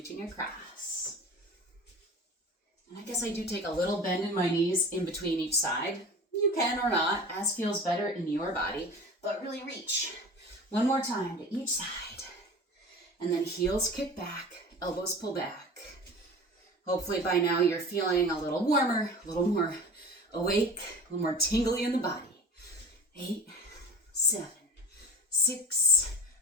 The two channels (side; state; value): both; normal; correlation 0.36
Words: across. And I guess I do take a little bend in my knees in between each side. You can or not, as feels better in your body, but really reach. One more time to each side. And then heels kick back, elbows pull back. Hopefully by now you're feeling a little warmer, a little more awake, a little more tingly in the body. 8, 7, 6,